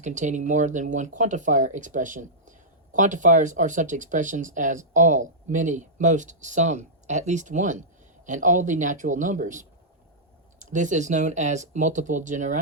more than one quantifier expression. Quantifiers are such expressions as all, many, most, some, at least one, and all the natural numbers. This is known as multiple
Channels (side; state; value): both; normal; correlation -0.12